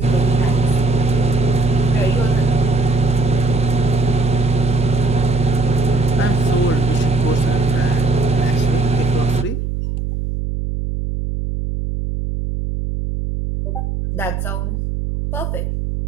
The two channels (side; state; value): right; noise; hum, 3 dB below the sound